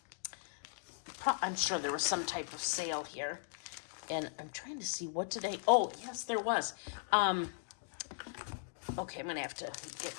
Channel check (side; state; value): right; silent; digital silence